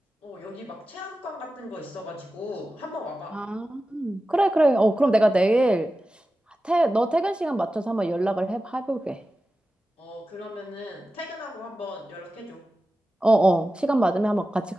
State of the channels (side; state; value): both; normal; correlation 0.93